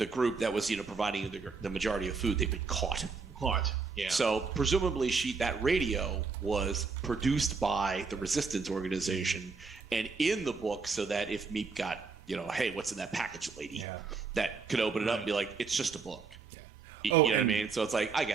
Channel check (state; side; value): quieter; left; 4.7 dB